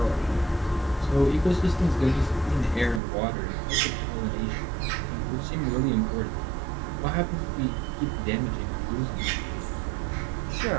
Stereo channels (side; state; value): left; drops out; at 3.0 s